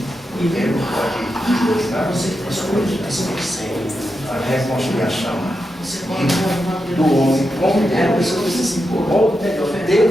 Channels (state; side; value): normal; both; correlation 0.87